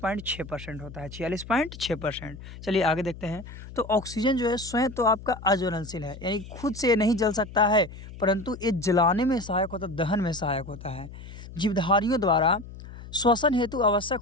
होता है, 46.6%। चलिए आगे देखते हैं। तो ऑक्सीजन जो है स्वयं तो आपका अज्वलनशील है, यानी खुद से ये नहीं जल सकता है, परंतु ये जलाने में सहायक होता है, दहन में सहायक होता है। जीवधारियों द्वारा श्वसन हेतु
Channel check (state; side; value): noise; left; hum, 14 dB below the sound